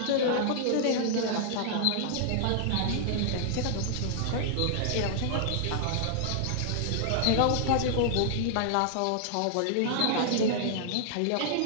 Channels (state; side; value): different; both; correlation -0.01